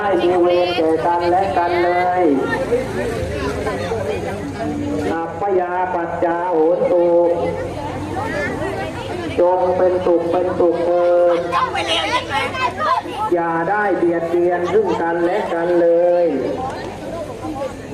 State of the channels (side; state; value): both; identical; correlation 1.00